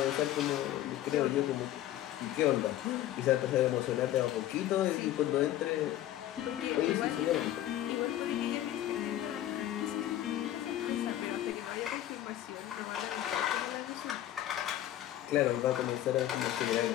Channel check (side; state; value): right; quieter; 12.9 dB